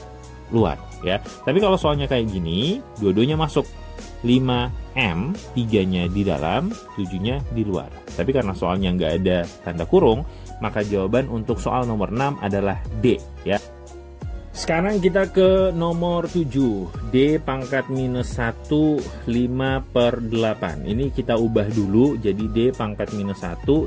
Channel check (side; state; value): both; identical; correlation 1.00